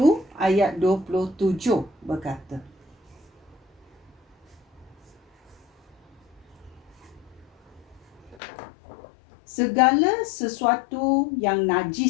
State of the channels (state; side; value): drops out; right; at 8.4 s